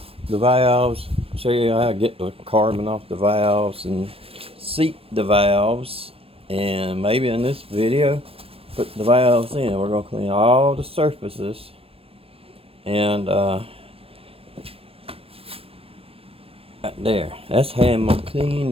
the valves, show you how to get the carbon off the valves and seat the valves, and maybe in this video put the valves in. We're gonna clean all the surfaces and right there. That's how I'm gonna clean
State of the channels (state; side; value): late; left; 0.28 ms